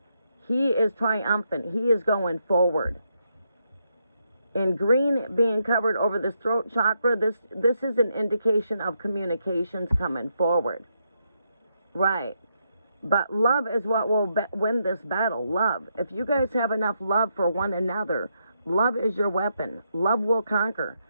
He is triumphant. He is going forward. In green being covered over this throat chakra, this is an indication of communications coming forward. Right. But love is what will win this battle. Love. If you guys have enough love for one another, love is your weapon. Love will conquer.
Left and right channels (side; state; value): both; inverted; correlation -0.80